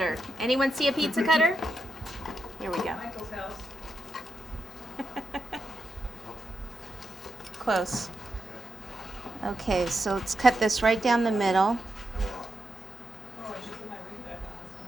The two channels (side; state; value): both; normal; correlation 0.85